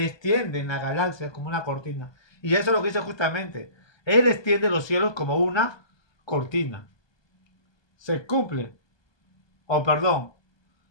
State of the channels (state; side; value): late; right; 1.2 ms